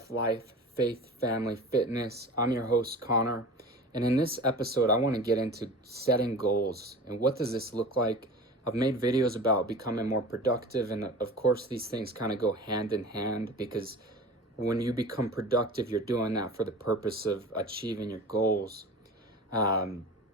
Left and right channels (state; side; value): normal; both; correlation 0.36